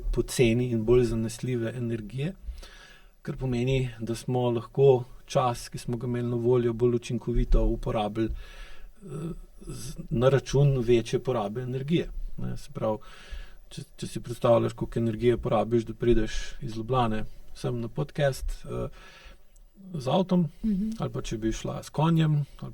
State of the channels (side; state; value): both; identical; correlation 1.00